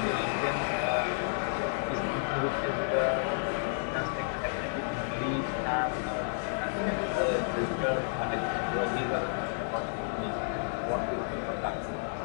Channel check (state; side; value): silent; right; digital silence